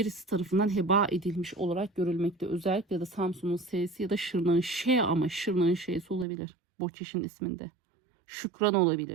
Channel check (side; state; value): left; drops out; at 6.2 s